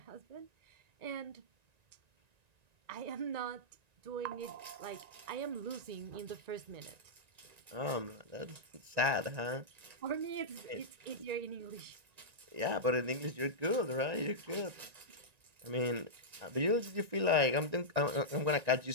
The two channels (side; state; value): left; late; 1.9 ms